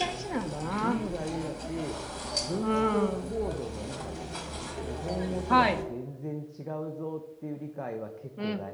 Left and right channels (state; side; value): identical; both; correlation 1.00